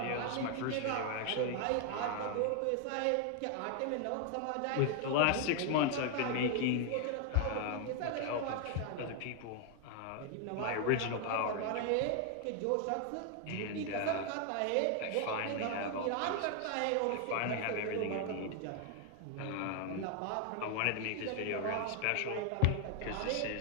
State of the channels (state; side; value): different; both; correlation 0.00